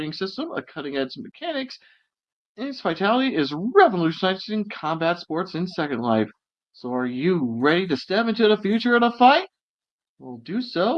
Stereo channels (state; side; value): identical; both; correlation 1.00